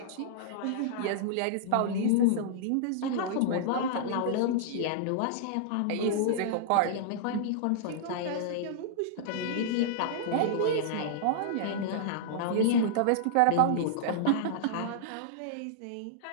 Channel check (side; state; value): both; different; correlation -0.02